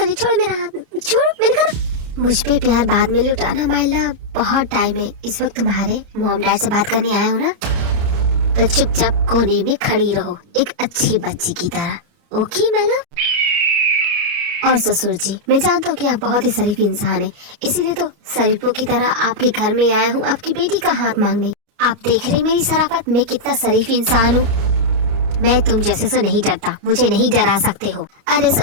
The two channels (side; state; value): left; late; 29 ms